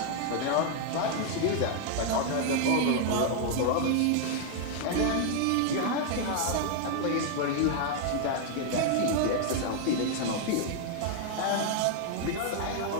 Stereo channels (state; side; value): different; both; correlation 0.00